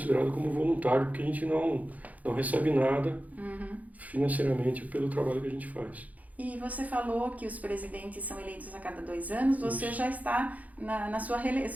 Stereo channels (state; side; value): late; left; 0.075 ms